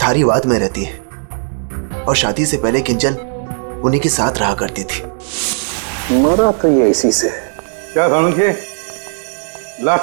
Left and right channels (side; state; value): left; silent; digital silence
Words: धारीवाद में रहती है, और शादी से पहले किंजल उन्हीं के साथ रहा करती थी। मरा तो ये इसी से। क्या सानुखे,